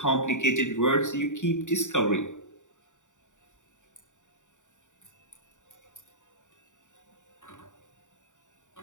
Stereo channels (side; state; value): right; late; 0.86 ms